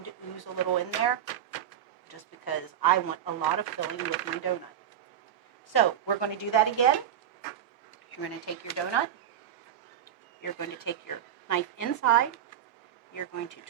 to ooze a little in there just because I want a lot of filling with my donut. So we're going to do that again. You're going to take your donut. You're going to take your knife inside. You're going to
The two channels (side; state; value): left; quieter; 10.0 dB